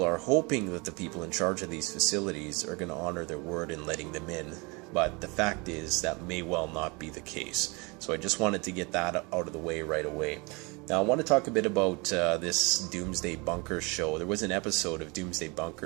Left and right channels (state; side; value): quieter; left; 28.2 dB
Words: are hoping that the people in charge of these facilities are going to honor their word in letting them in, but the fact is that may well not be the case. So I just wanted to get that out of the way right away. Now I want to talk a bit about this Doomsday Bunkers show. There was an episode of Doomsday